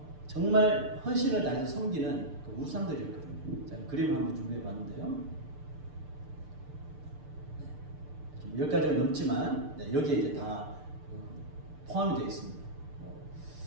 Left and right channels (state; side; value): late; left; 6.8 ms